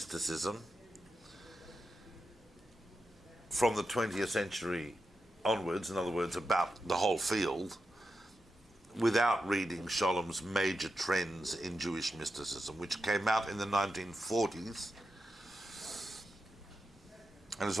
from the 20th century onwards, in other words, about the whole field, without reading Sholem's Major Trends in Jewish Mysticism, which came out in the 1940s, and it's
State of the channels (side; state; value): both; normal; correlation 0.89